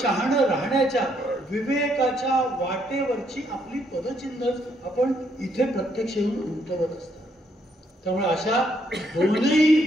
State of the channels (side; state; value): both; normal; correlation 0.72